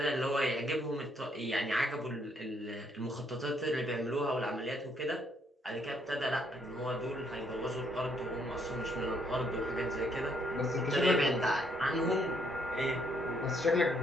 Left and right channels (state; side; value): normal; both; correlation 0.70